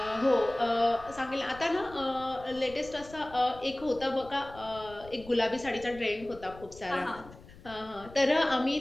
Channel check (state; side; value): noise; left; rumble, 19 dB below the sound